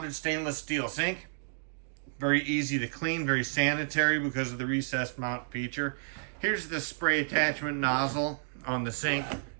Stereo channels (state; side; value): silent; left; digital silence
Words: stainless steel sink. Very easy to clean, very sanitary because of the recessed mount feature. Here's the spray attachment nozzle on the sink.